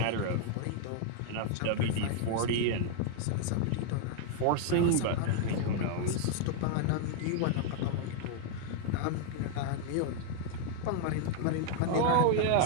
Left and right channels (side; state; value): both; different; correlation 0.00